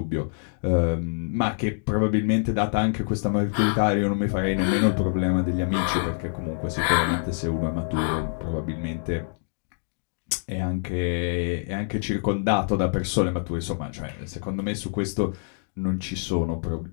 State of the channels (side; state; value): right; silent; digital silence